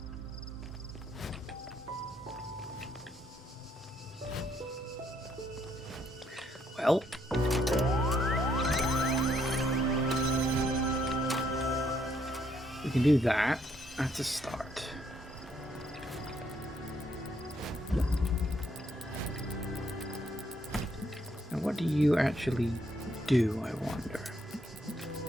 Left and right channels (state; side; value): normal; both; correlation 0.72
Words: Well. We can do that. That's a start. Now, what do you actually do, I wonder?